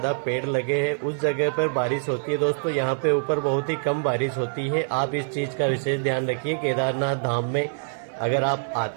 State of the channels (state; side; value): silent; left; 62 dB below the other